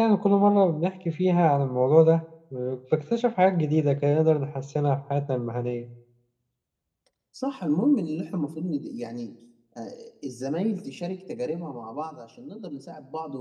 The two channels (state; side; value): identical; both; correlation 1.00